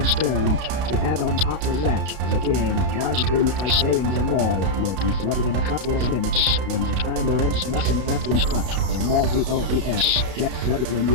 To add on top of that, the game lies to you by saying the mall will be flooded in a couple of minutes. When the timer ends, nothing happens, but the mall DOES get flooded when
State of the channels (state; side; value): late; left; 32 ms